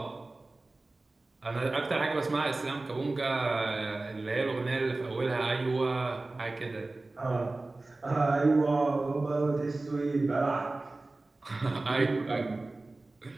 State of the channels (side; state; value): left; quieter; 3.1 dB